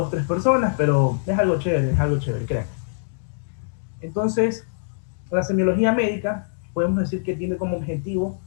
tres personas, pero es algo chévere, crean. Entonces, la semiología médica, podemos decir que tiene como objetivo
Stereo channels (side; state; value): right; silent; digital silence